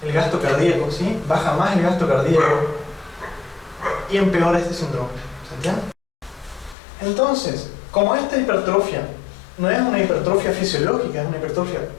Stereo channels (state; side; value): drops out; right; at 6.8 s